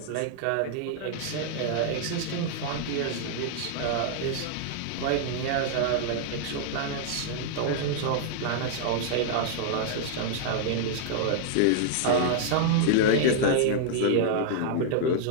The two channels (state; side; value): different; both; correlation -0.01